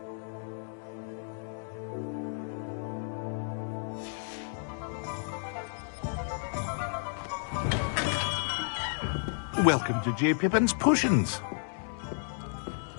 Welcome to J. Pippin's Potions.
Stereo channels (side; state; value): right; silent; digital silence